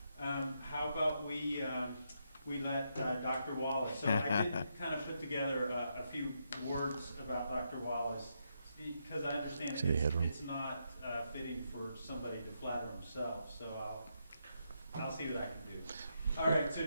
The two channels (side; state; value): both; inverted; correlation -0.80